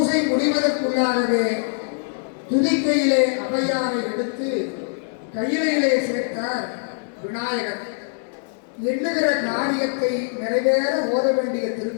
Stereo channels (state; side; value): silent; right; digital silence